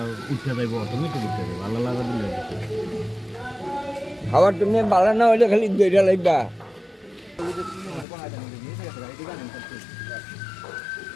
উঠে যাইব অটোমেটিক উঠে যাবে ভালো লাগা দিলে খাবার তুমি ভালো না হইলে খালি দুইটা লাগবা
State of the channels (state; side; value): drops out; right; at 8.1 s